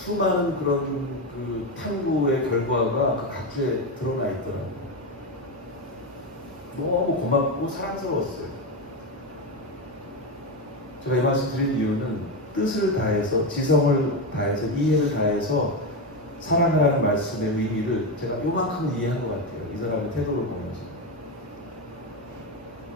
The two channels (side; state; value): both; normal; correlation 0.13